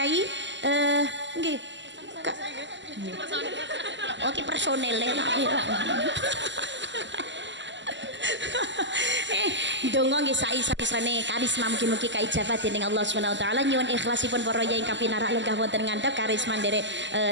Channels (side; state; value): left; late; 0.53 ms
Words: nggih oke personel donga nggih saisa-isane karisma mugi-mugi kaijabah dening Allah Subhanahu wa taala. Nyuwun ikhlasipun para yai ingkang pinarak lenggah wonten ngandhap karisma nderek